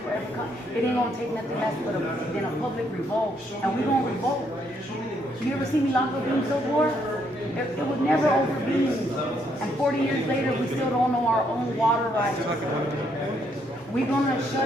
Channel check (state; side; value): normal; both; correlation 0.72